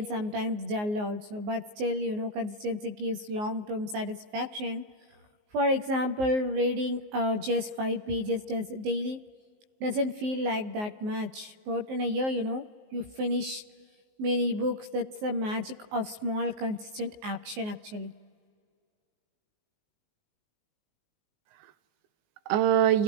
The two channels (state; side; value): late; left; 19 ms